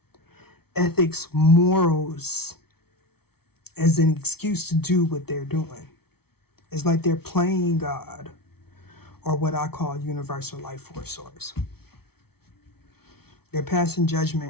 ethics, morals as an excuse to do what they're doing. It's like they're playing God, or what I call universal life force source. They're passing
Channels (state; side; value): late; right; 0.95 ms